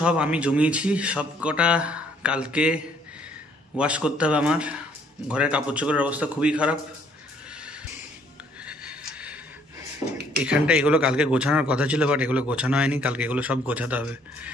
আমি জমিয়েছি, সব কটা কালকে ওয়াশ করতে হবে আমার। ঘরের কাপড় চোপড়ের অবস্থা খুবই খারাপ। এখানটা এগুলো কালকে গোছানোর কথা ছিল, বাট এগুলো গোছানো হয়নি। কালকে এগুলো সব গোছাতে হবে,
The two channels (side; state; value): both; normal; correlation 0.64